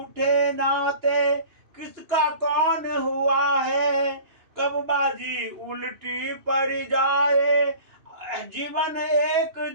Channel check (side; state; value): left; late; 2.8 ms